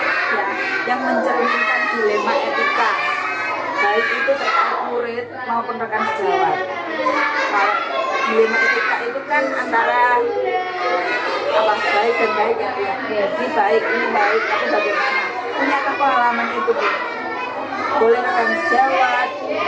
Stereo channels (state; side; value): identical; both; correlation 1.00